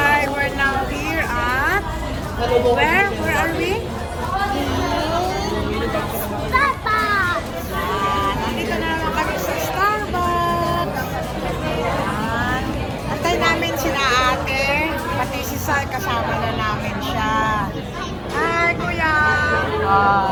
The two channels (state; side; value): identical; both; correlation 1.00